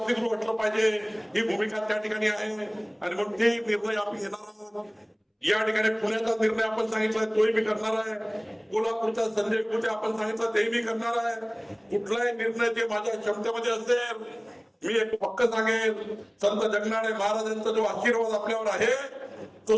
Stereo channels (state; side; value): identical; both; correlation 1.00